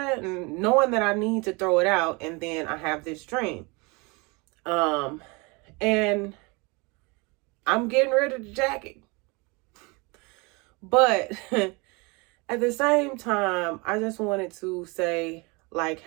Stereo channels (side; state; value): left; quieter; 28.0 dB